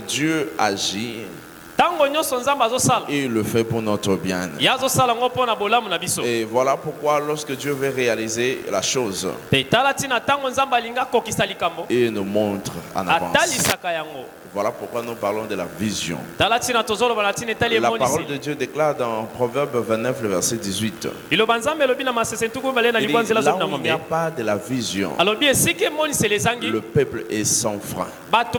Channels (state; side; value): identical; both; correlation 1.00